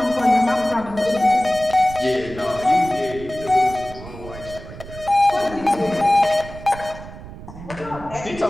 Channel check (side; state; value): right; noise; rumble, 14 dB below the sound